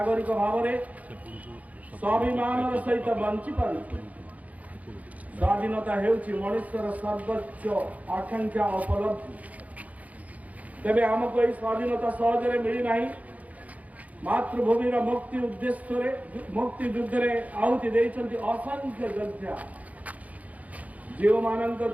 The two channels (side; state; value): left; late; 0.072 ms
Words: भाव में स्वाभिमान सहित बंची पार। स्वाधीनता हेउछि मनुष्यर सर्वोच्च आकांक्षा उपलब्धि। तेबे आमको यही स्वाधीनता सहजरे मिली नहीं। मातृभूमि मुक्ति उद्देश्य मुक्ति युद्ध में आहुति देइछन्ति असंख्य योद्धा। जो मानक